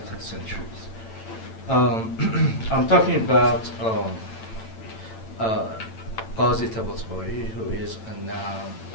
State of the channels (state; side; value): late; right; 8.9 ms